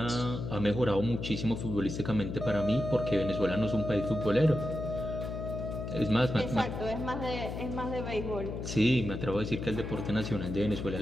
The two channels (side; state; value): left; noise; hum, 6 dB below the sound